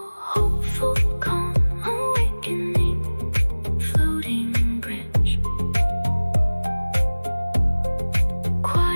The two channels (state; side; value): inverted; both; correlation -1.00